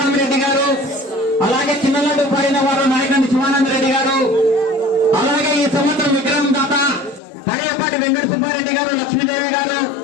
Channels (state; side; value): drops out; right; at 7.2 s